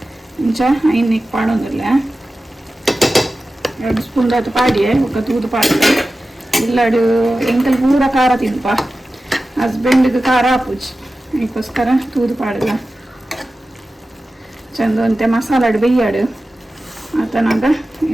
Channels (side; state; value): both; normal; correlation 0.94